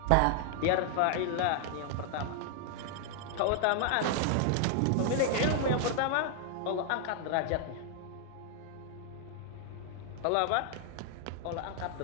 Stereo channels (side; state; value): both; different; correlation 0.00